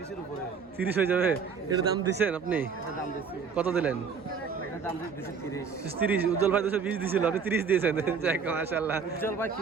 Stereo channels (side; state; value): left; quieter; 5.9 dB